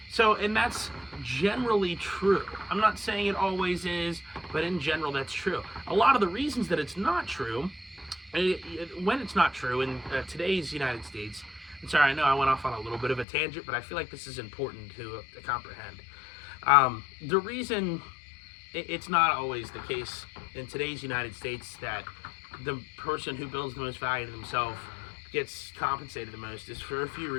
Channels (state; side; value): drops out; right; at 13.2 s